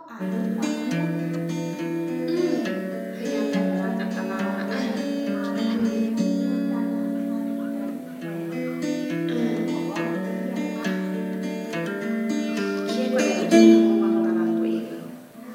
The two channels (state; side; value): identical; both; correlation 1.00